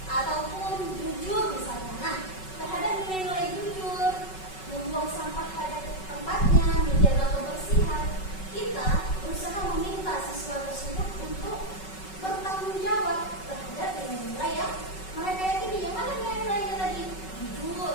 ataupun jujur misalnya. Nah, terhadap nilai-nilai jujur, membuang sampah pada tempatnya, menjaga kebersihan, kita berusaha meminta siswa tersebut untuk bertanggung jawab terhadap nilai-nilai yang mereka yakini. Yang mana nilai-nilainya tadi? Jujur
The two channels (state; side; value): late; right; 5.3 ms